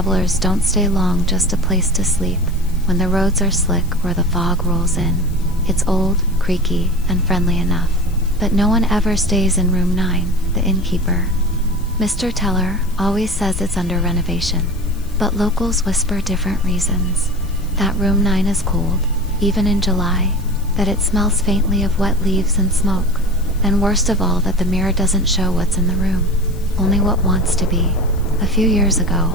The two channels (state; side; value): noise; left; hiss, 24 dB below the sound